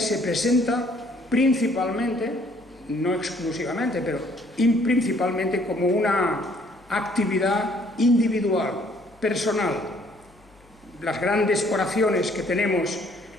presenta principalmente, no exclusivamente, pero principalmente como una actividad individual, personal. Las grandes oraciones que tenemos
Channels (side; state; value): left; noise; hum, 29 dB below the sound